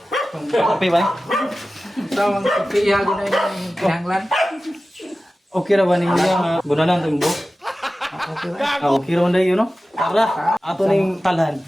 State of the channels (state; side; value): normal; both; correlation 0.95